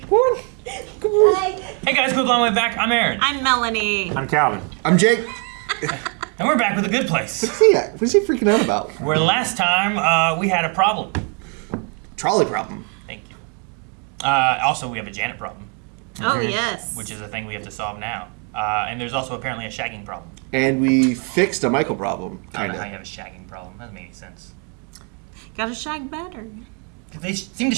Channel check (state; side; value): quieter; left; 37.9 dB